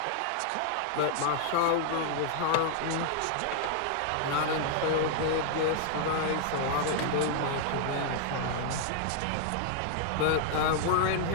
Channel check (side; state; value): both; different; correlation 0.00